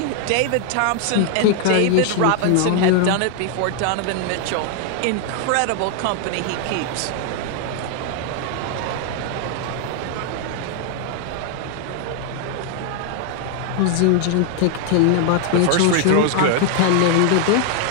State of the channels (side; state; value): both; different; correlation 0.00